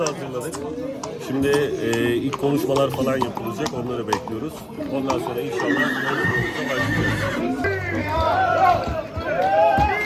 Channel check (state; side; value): identical; both; correlation 1.00